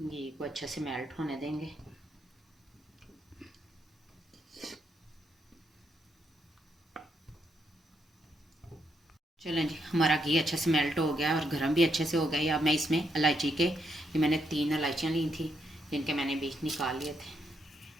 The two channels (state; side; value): normal; both; correlation 0.78